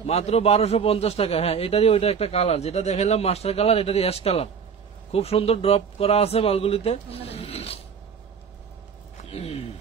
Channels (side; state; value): left; quieter; 6.6 dB